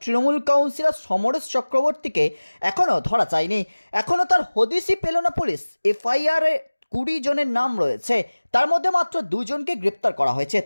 তৃণমূল কাউন্সিলর সমরেশ চক্রবর্তীকে এখনও ধরা যায়নি। এখনও তার হদিশই পেল না পুলিশ। এফআইআরে 20 জনের নাম রয়েছে, তার মধ্যে মাত্র 2 জনকে গ্রেপ্তার করা হয়েছে।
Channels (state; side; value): inverted; both; correlation -1.00